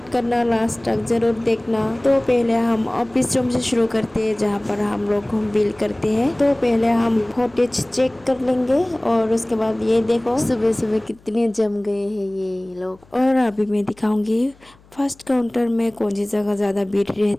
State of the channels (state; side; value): noise; left; hum, 28 dB below the sound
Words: करना, लास्ट तक जरूर देखना। तो पहले हम ऑफिस रूम से शुरू करते हैं जहाँ पर हम लोग बिल करते हैं। तो पहले हम फुटेज चेक कर लेंगे और उसके बाद ये देखो सुबह सुबह कितने जम गए हैं ये लोग। और अभी मैं दिखाऊंगी फर्स्ट काउंटर में कौन सी जगह ज़्यादा भीड़